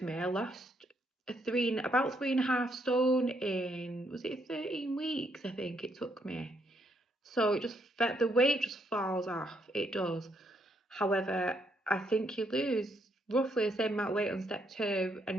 me. I lost about 3.5 stone in, was it 13 weeks? I think it took me. So the weight just falls off. It does. However, I think you lose roughly the same amount of weight on step 2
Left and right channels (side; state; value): both; normal; correlation 0.74